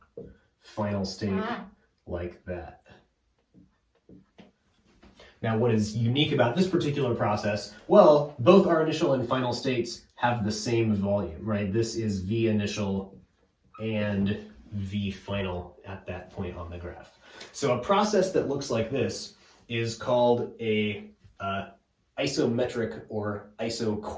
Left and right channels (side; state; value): both; identical; correlation 1.00